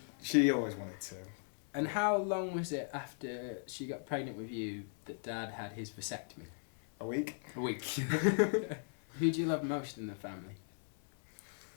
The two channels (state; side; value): silent; right; digital silence